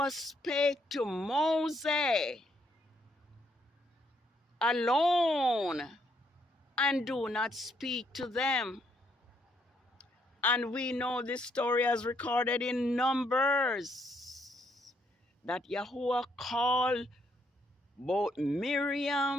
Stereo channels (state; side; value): normal; both; correlation 0.73